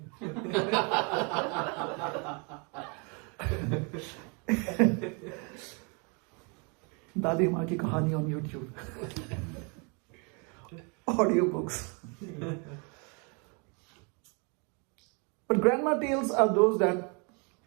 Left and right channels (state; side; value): quieter; left; 33.9 dB